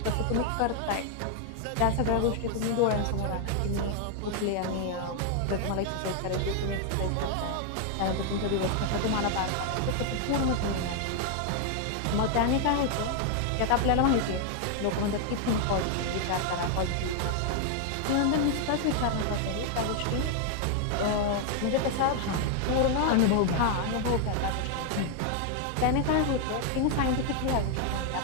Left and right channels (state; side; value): different; both; correlation 0.00